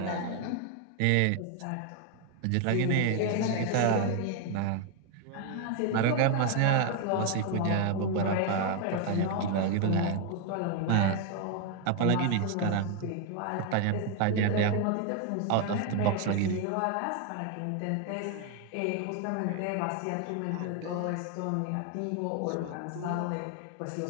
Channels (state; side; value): different; both; correlation 0.01